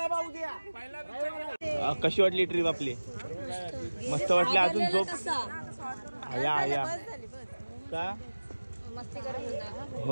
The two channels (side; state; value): both; inverted; correlation -1.00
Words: बा उद्या. कशी वाटली ट्रिप आपली? मस्त वाटली. अजून झोप या का?